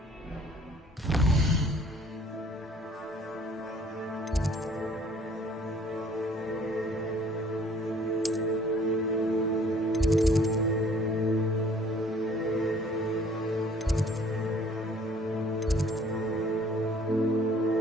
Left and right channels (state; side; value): normal; both; correlation 0.56